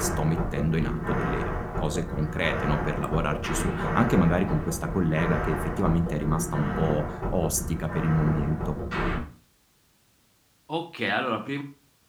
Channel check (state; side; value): identical; both; correlation 1.00